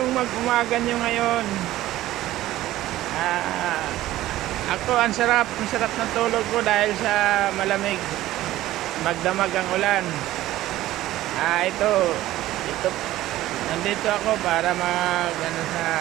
mag-umaga nyo ngayon? Ako, ang sarap ng tulog ko dahil sa malamig. Magdamag ang ulan. Ito, nandito ako para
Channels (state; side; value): quieter; left; 15.2 dB